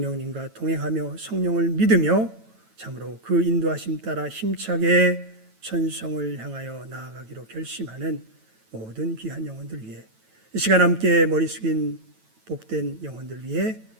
동행하며 성령을 믿으며 참으로 그 인도하심 따라 힘차게 천성을 향하여 나아가기로 결심하는 모든 귀한 영혼들 위해 이 시간 함께 머리 숙인 복된 영혼들 위해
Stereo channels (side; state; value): left; late; 9.1 ms